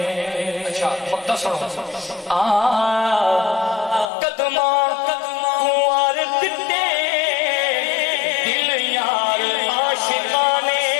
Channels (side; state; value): right; drops out; at 4.1 s